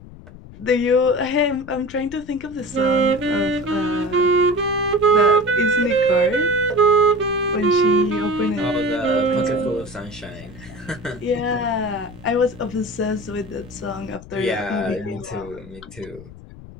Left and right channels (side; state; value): left; noise; rumble, 18 dB below the sound